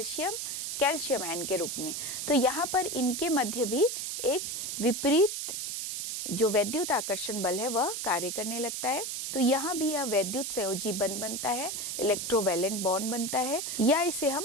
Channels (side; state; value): right; noise; hiss, 4 dB below the sound